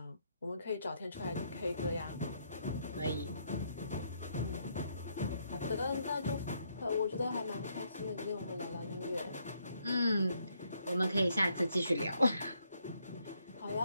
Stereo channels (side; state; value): both; inverted; correlation -0.73